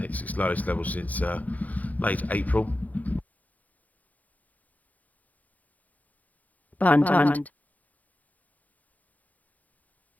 its lowest level since late April. Bund. Bund.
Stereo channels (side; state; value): right; late; 0.078 ms